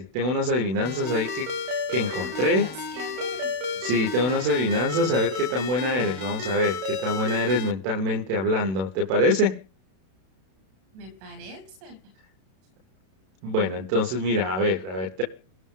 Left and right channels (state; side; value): late; left; 32 ms